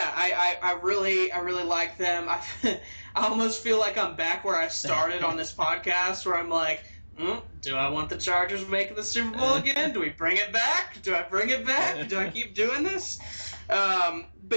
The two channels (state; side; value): inverted; both; correlation -1.00